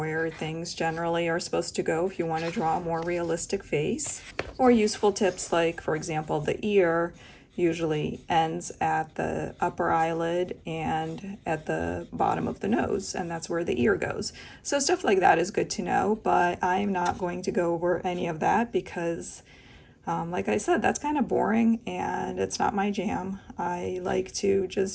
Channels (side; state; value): both; identical; correlation 1.00